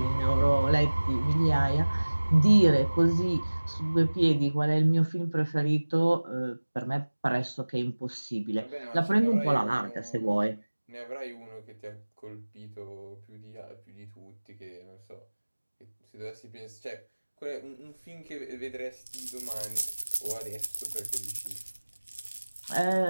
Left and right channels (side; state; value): both; inverted; correlation -1.00